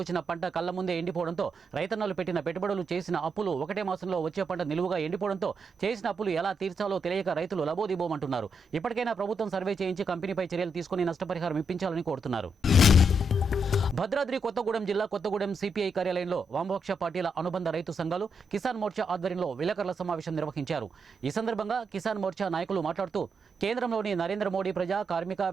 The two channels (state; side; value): normal; both; correlation 0.81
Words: పంట కళ్ల ముందే ఎండిపోవడంతో రైతన్నలు పెట్టిన పెట్టుబడులు, చేసిన అప్పులు ఒకటే మాసంలో వచ్చే పంట నిలువుగా ఎండిపోవడంతో చేసిన అప్పులు ఎలా తీర్చాలో తెలియక రైతులు లబోదిబోమంటున్నారు. ఇప్పటికైనా ప్రభుత్వం సర్వే చేయించి కంపెనీపై చర్యలు తీసుకుని నష్టపరిహారం ఇప్పించాలని కోరుతున్నారు. భద్రాద్రి కొత్తగూడెం జిల్లా కొత్తగూడెం సిపిఐ కార్యాలయంలో వామపక్ష పార్టీల అనుబంధ రైతు సంఘాలు కిసాన్ మోర్చా ఆధ్వర్యంలో విలేకరుల సమావేశం నిర్వహించారు. ఈ సందర్భంగా కిసాన్ మోర్చా నాయకులు మాట్లాడుతూ కేంద్రంలోని నరేంద్ర మోడీ ప్రజా, కార్మిక